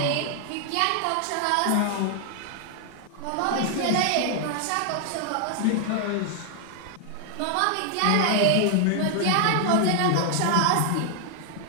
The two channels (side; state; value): both; different; correlation 0.00